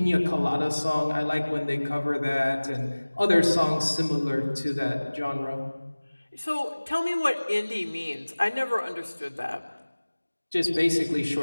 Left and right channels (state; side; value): inverted; both; correlation -1.00